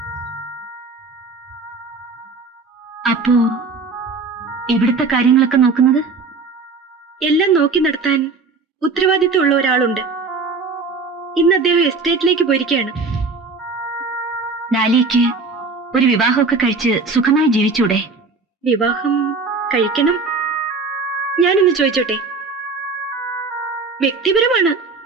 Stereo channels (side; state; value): left; quieter; 4.2 dB